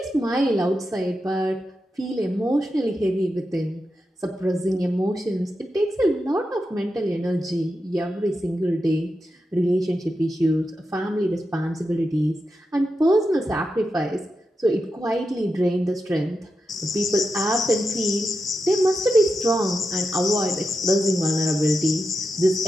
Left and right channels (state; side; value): normal; both; correlation 0.88